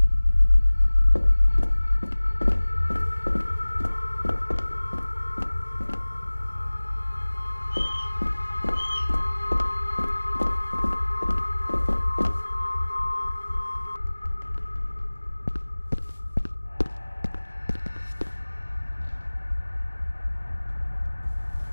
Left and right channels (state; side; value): inverted; both; correlation -1.00